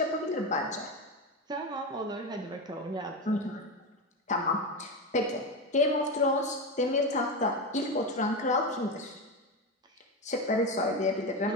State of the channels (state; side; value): normal; both; correlation 0.16